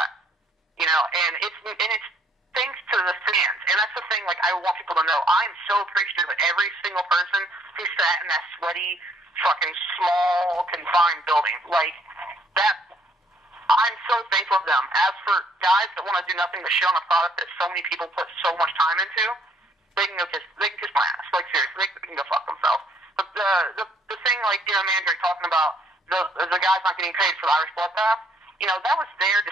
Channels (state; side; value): normal; both; correlation 0.65